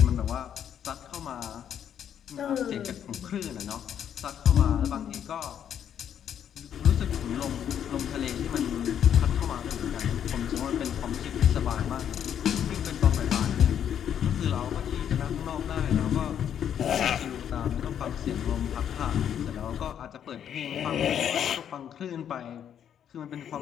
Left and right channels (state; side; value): quieter; right; 9.2 dB